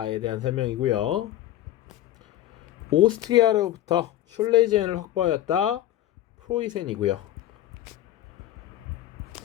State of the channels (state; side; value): quieter; right; 13.3 dB